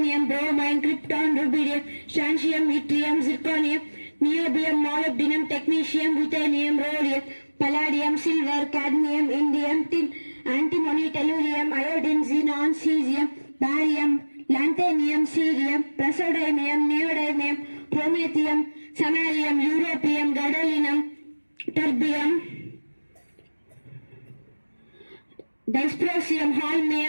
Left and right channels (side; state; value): both; inverted; correlation -1.00